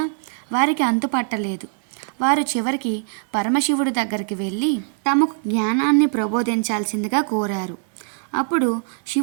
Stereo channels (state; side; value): silent; left; digital silence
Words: వారికి అంతుపట్టలేదు. వారు చివరికి పరమశివుడి దగ్గరికి వెళ్ళి తమకు జ్ఞానాన్ని ప్రబోధించాల్సిందిగా కోరారు. అప్పుడు